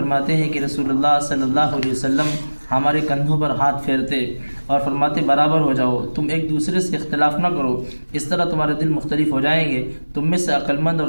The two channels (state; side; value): inverted; both; correlation -1.00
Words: ہیں کہ رسول اللہ صلی اللہ علیہ وسلم ہمارے کندھوں پر ہاتھ پھیرتے اور فرماتے برابر ہو جاؤ، تم ایک دوسرے سے اختلاف نہ کرو، اس طرح تمہارے دل مختلف ہو جائیں گے. تم میں سے عقلمند اور